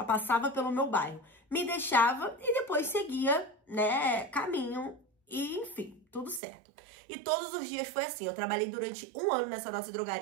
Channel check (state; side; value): drops out; left; at 6.4 s